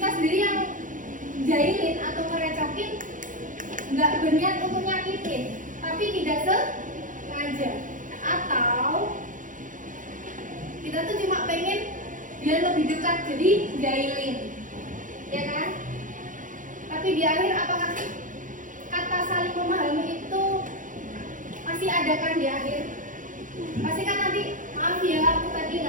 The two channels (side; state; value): left; late; 0.38 ms